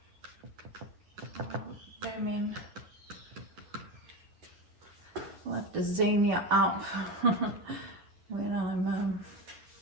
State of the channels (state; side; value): late; left; 10 ms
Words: I'll zoom in. I'll have to zoom you up when I'm